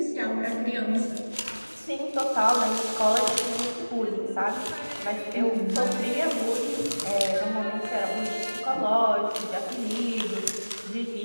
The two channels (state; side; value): inverted; both; correlation -1.00